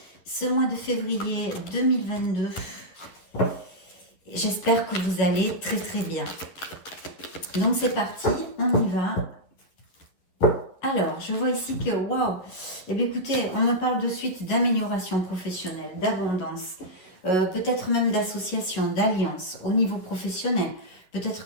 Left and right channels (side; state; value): right; late; 11 ms